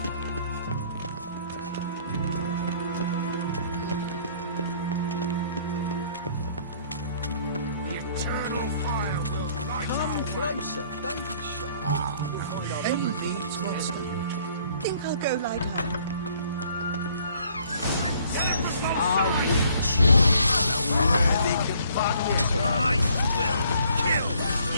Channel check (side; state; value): both; inverted; correlation -0.61